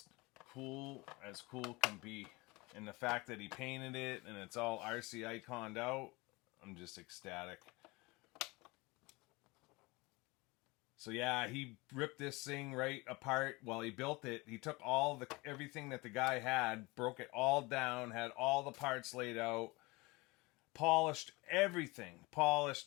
cool as cool can be. And the fact that he painted it, and it's all RC iconed out, I'm just ecstatic. So yeah, he ripped this thing right apart while he built it. He took everything that the guy had, broke it all down, had all the parts laid out, polished everything. Polished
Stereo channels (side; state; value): right; quieter; 24.0 dB